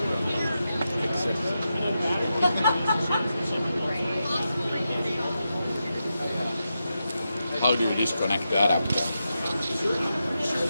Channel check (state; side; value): inverted; both; correlation -0.88